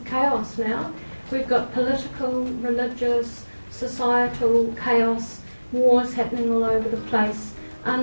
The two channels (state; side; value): inverted; both; correlation -1.00